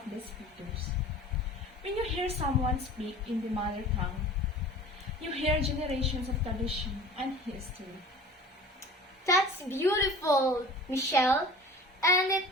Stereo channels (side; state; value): both; normal; correlation 0.42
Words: the speakers. When you hear someone speak in the mother tongue, you hear generations of tradition and history. That's beautiful, Michelle. And it